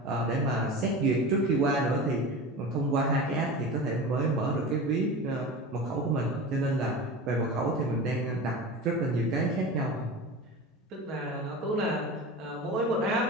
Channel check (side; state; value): both; normal; correlation 0.31